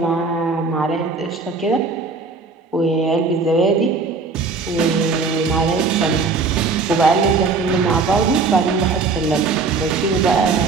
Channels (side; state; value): left; quieter; 4.3 dB